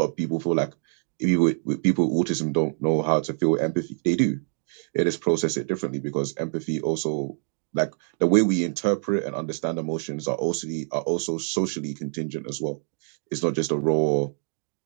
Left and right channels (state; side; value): silent; left; digital silence